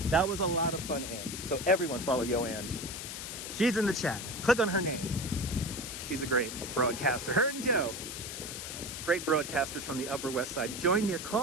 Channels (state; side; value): noise; left; hiss, 7 dB below the sound